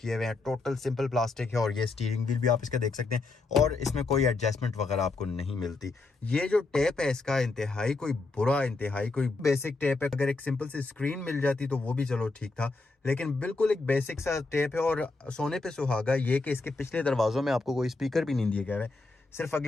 हुए हैं, टोटल सिंपल प्लास्टिक है, और ये स्टीयरिंग व्हील भी आप इसका देख सकते हैं, और इसमें कोई एडजस्टमेंट वगैरह आपको नहीं मिलती। ये जो टेप है इसका इंतहाई कोई बुरा, इंतहाई कोई बेसिक टेप है। अगर एक सिंपल सी स्क्रीन मिल जाती तो वो भी चलो ठीक था, लेकिन बिल्कुल एक बेसिक सा टेप है। और सोने पे सुहागा ये कि इसके पिछले दरवाज़ों में आपको कोई स्पीकर भी नहीं दिए गए हैं, सिर्फ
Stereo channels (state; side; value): quieter; right; 3.5 dB